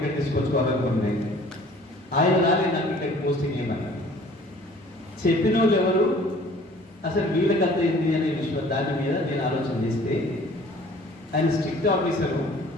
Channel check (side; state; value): both; normal; correlation 0.52